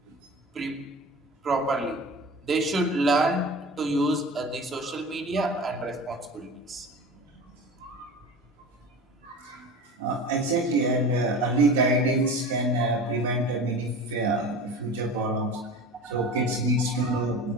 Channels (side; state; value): both; normal; correlation 0.34